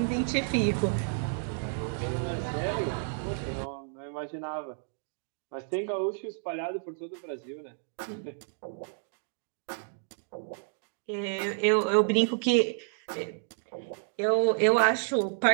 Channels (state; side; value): silent; left; digital silence